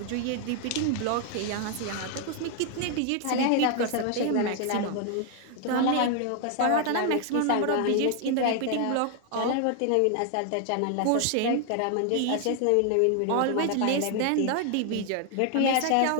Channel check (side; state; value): both; different; correlation 0.00